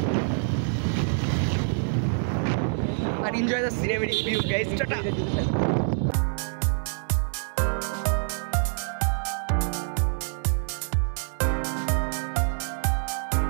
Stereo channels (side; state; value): left; silent; 61 dB below the other